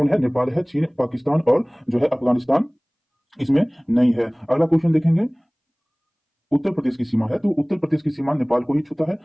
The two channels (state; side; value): identical; both; correlation 1.00